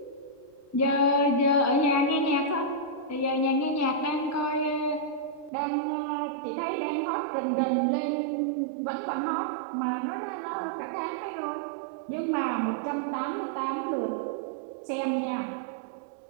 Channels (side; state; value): left; drops out; at 5.5 s